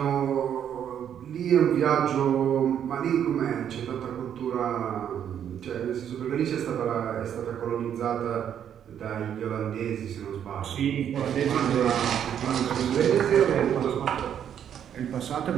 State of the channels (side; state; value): left; quieter; 9.2 dB